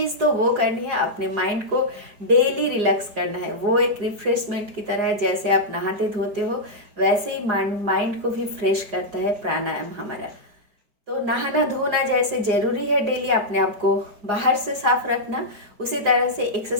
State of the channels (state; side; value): late; left; 4.9 ms